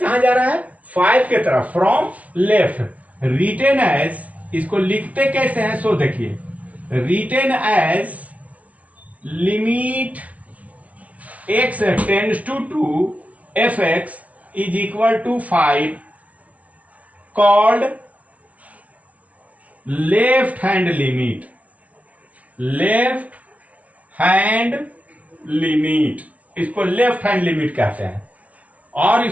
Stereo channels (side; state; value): left; late; 0.067 ms